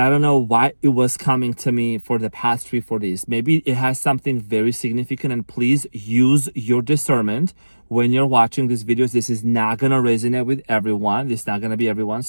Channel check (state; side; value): inverted; both; correlation -1.00